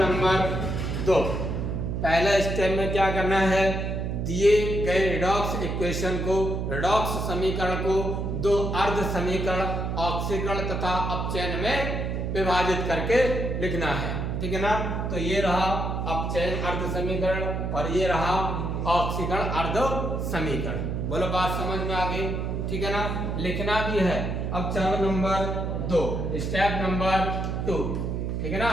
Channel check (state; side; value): noise; right; hum, 2 dB below the sound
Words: नंबर 2। पहला स्टेप में क्या करना है? दिए गए रेडॉक्स इक्वेशन को, रेडॉक्स समीकरण को दो अर्ध समीकरण ऑक्सीकरण तथा अपचयन में विभाजित करके लिखना है, ठीक है ना। तो ये रहा अपचयन अर्ध समीकरण और ये रहा ऑक्सीकरण अर्ध समीकरण। बोलो बात समझ में आ गई? ठीक है ना, लिखना भी है। अब चरण नंबर 2, स्टेप नंबर 2, ठीक है ना,